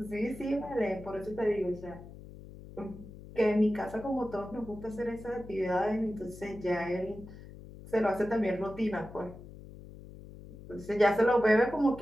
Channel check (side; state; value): left; noise; hum, 16 dB below the sound